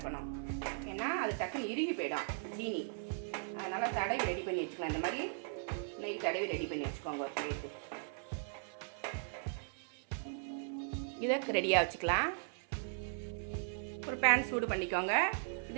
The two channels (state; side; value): silent; left; 52 dB below the other